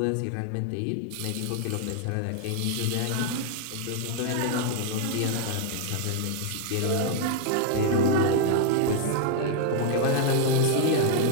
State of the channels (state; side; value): different; both; correlation 0.00